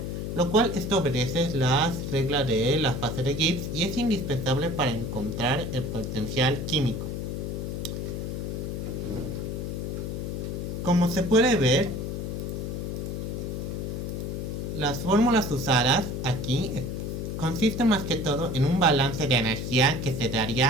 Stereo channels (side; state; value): left; noise; hum, 4 dB below the sound